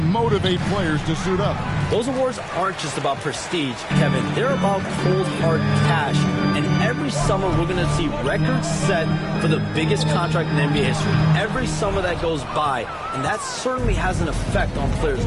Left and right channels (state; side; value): identical; both; correlation 1.00